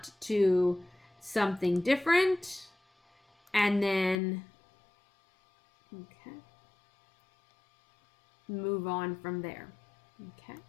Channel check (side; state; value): right; drops out; at 4.2 s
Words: to something different, and then, okay, move on from there. Okay,